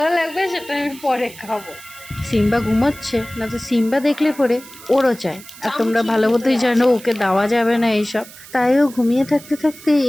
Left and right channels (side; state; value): right; noise; hiss, 18 dB below the sound